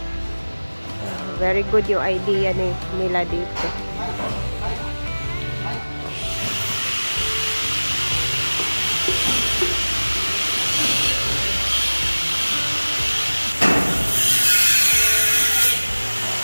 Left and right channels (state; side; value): inverted; both; correlation -1.00